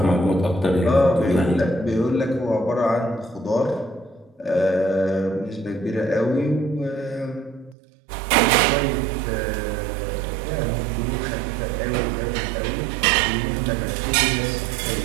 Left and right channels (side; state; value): left; drops out; at 7.8 s